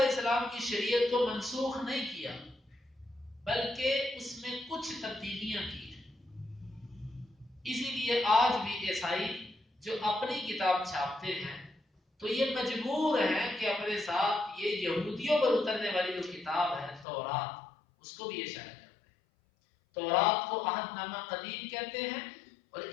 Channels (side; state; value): right; drops out; at 17.1 s